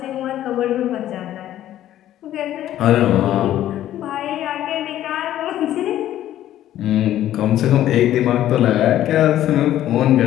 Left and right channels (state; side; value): quieter; right; 12.6 dB